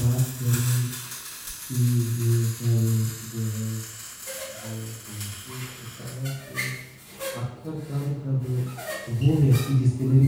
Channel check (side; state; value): both; identical; correlation 1.00